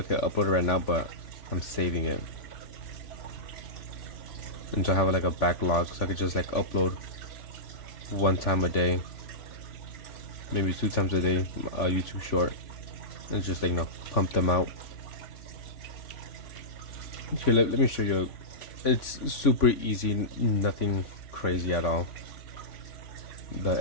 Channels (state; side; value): late; right; 3.5 ms